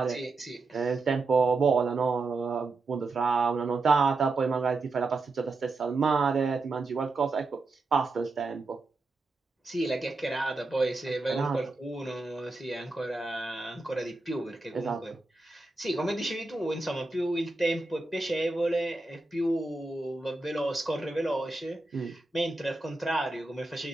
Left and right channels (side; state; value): left; quieter; 3.4 dB